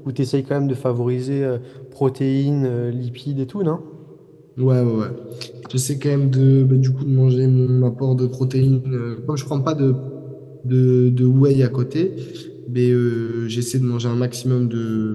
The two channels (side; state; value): both; identical; correlation 1.00